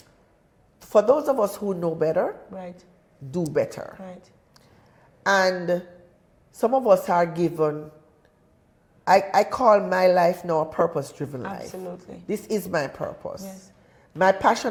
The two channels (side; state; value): both; identical; correlation 1.00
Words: for those of us who know better, Right. do better. Right. And some of us are given, I call my life now a purpose-driven life. Absolutely. This is my purpose. Yes. My